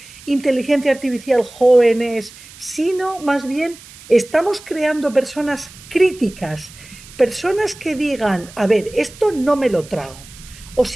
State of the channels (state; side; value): noise; right; hiss, 20 dB below the sound